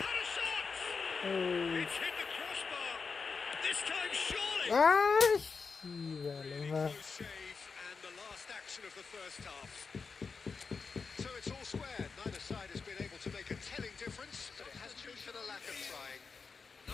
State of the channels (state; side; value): quieter; right; 5.0 dB